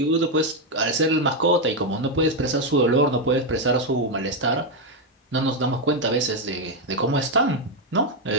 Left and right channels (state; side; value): normal; both; correlation 0.04